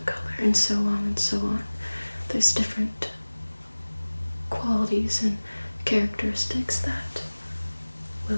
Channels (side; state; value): both; inverted; correlation -1.00